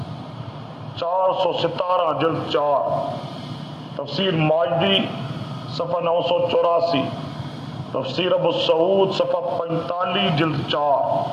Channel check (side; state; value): both; identical; correlation 1.00